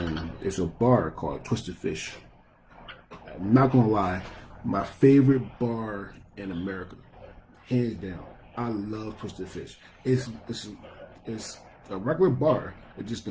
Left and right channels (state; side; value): identical; both; correlation 1.00